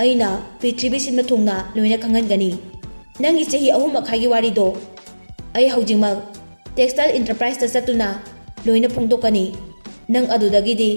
ꯑꯩꯅ ꯄ꯭ꯔꯤꯊꯤꯕꯤ ꯁꯤꯟꯕ ꯊꯨꯡꯅ ꯂꯣꯏꯅ ꯈꯪꯍꯟꯒꯅꯤ꯫ ꯅꯪꯒꯤ ꯆꯍꯤ 3.5ꯒꯤ ꯋꯥꯔꯤꯗꯣ ꯑꯩ ꯍꯧꯖꯤꯛꯃꯛ ꯇꯦꯛꯁꯇꯥꯏꯜ ꯏꯟꯇꯔꯄ꯭ꯔꯥꯏꯁꯇ ꯆꯠꯇꯨꯅ ꯂꯣꯏꯅ ꯐꯣꯡꯗꯣꯛꯀꯅꯤ꯫ ꯅꯪ ꯑꯗꯨꯗꯒꯤꯗꯤ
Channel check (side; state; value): both; inverted; correlation -1.00